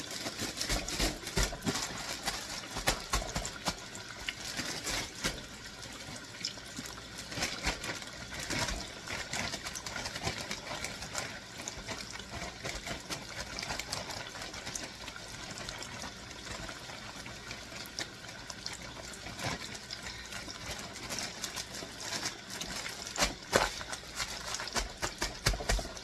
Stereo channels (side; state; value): both; identical; correlation 1.00